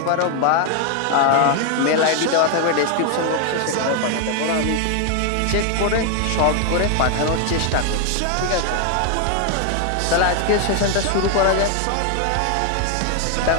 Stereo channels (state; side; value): different; both; correlation 0.01